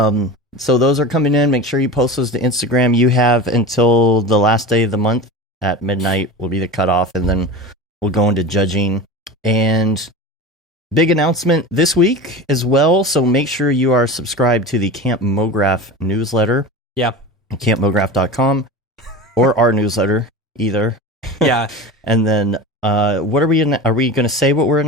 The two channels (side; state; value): both; normal; correlation 0.30